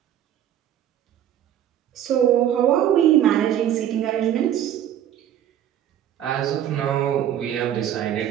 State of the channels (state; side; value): quieter; left; 10.8 dB